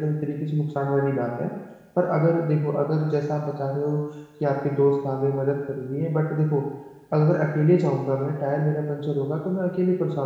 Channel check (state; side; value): identical; both; correlation 1.00